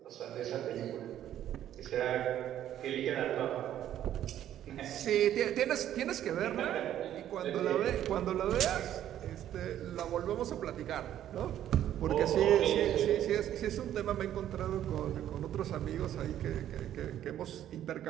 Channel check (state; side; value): quieter; left; 11.4 dB